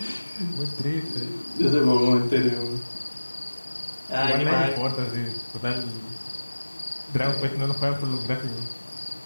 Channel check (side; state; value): both; inverted; correlation -1.00